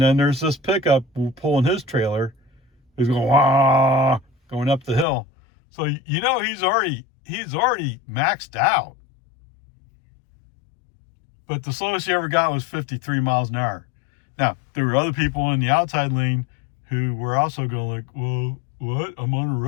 then there's this pickup pulling his trailer. He's going going up the hill. So he's already maxed out. But the slowest he ever got was 53 miles an hour. Now, there were other people in the outside lane who were also going like, well, what? I'm on a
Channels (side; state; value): right; drops out; at 5.1 s